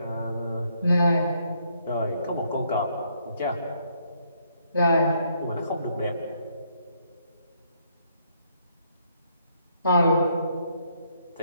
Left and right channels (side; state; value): both; inverted; correlation -0.71